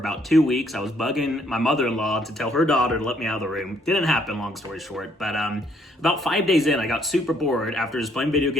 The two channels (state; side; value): normal; both; correlation 0.67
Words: 2 weeks. I was bugging my mother-in-law to tell her daughter to let me out of the room. Didn't happen, long story short. But about 5 days in, I got super bored after just playing video